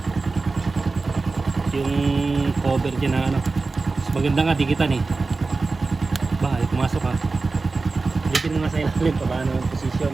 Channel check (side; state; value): left; quieter; 3.9 dB